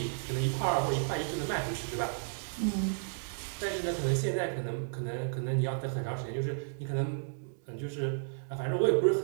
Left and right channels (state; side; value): silent; left; 56 dB below the other